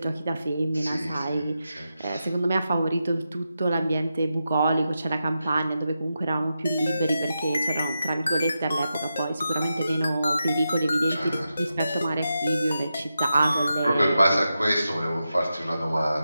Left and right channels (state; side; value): inverted; both; correlation -0.89